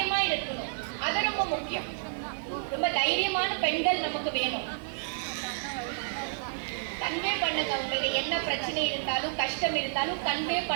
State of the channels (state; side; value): silent; left; digital silence